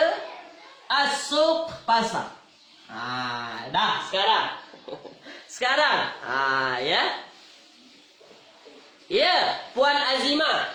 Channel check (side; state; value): both; identical; correlation 1.00